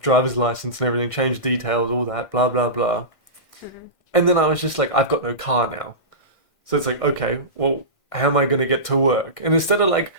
driver's license and everything, changed details, all that, blah, blah, blah. And then I was just like, I've got no car now. So it's like, okay, well, how am I going to get to work? And instead of like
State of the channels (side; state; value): right; late; 1.5 ms